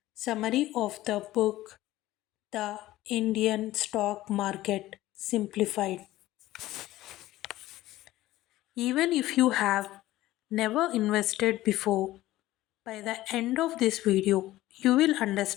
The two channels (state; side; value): quieter; right; 16.1 dB